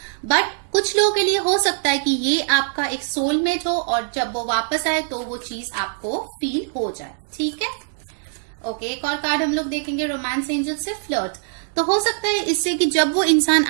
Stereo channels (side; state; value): left; silent; digital silence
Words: बट कुछ लोगों के लिए हो सकता है कि ये आपका एक सोलमेट हो और जब वो वापस आए तो वो चीज आपको फील हो जाए। ठीक है, ओके, एक और कार्ड हम लोग देखेंगे रोमांस एंजल से, फ्लर्ट। तो हो सकता है इससे कि जब वो इंसान